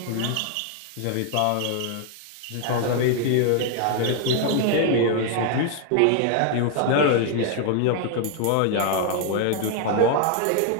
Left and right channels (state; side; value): different; both; correlation 0.00